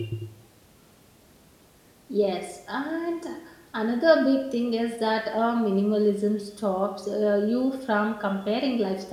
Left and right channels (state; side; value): identical; both; correlation 1.00